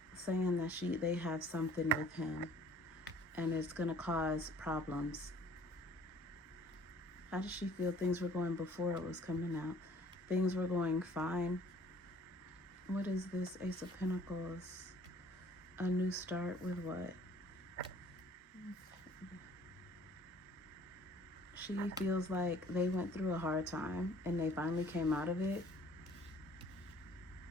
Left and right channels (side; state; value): both; normal; correlation 0.54